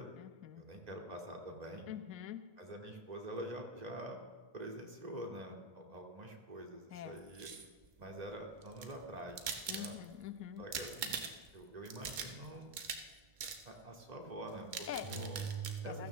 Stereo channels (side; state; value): left; late; 2.2 ms